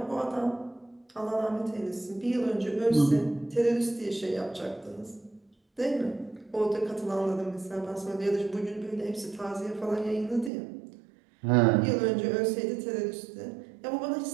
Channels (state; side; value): drops out; left; at 10.5 s